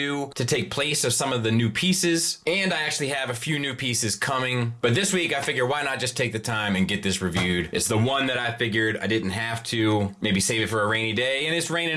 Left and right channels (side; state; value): both; identical; correlation 1.00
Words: to take place of some of the new pieces, and I actually have a few new pieces coming. But this week, I figure why not just take the time and get this reviewed. It's the one that I figured I didn't have to maybe save it for a rainy day, and it's